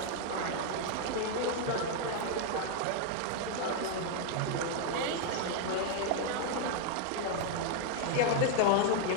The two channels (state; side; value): different; both; correlation 0.00